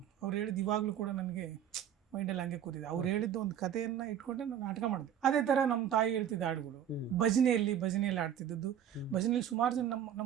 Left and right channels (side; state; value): left; quieter; 9.6 dB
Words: ಅವ್ರು ಹೇಳಿದ್ದು ಇವಾಗಲೂ ಕೂಡ ನನಗೆ ಮೈಂಡಲ್ಲಿ ಹಂಗೆ ಕೂತಿದೆ. ಅವ್ರು ಹೇಳಿದ್ದು ಒಂದು ಕಥೆಯನ್ನು ಇಟ್ಕೊಂಡೆ ನಾನು ನಾಟಕ ಮಾಡಿದೆ. ಅದೇ ಥರ ನಮ್ಮ ತಾಯಿ ಹೇಳ್ತಿದ್ದ ಹಾಡುಗಳು, ಭಜನೆಯಲ್ಲಿ ಆಡ್ತಿದ್ದದ್ದು. ಭಜನೆಯಲ್ಲಿ ಸುಮಾರು ಜನ